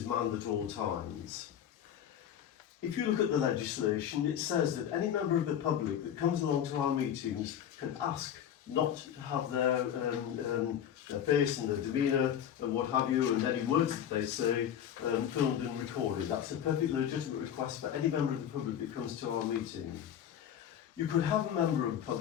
manned at all times. If you look at the legislation, it says that any member of the public that comes along to our meetings can ask not to have their face and their demeanour and what have you, and any words that they say filmed and recorded. That's a perfectly legitimate request for any member of the public that comes to our meeting. You could have a member of the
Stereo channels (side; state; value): right; quieter; 9.6 dB